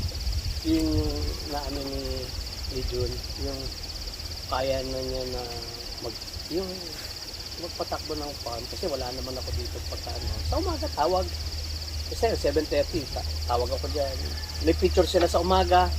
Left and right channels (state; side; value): identical; both; correlation 1.00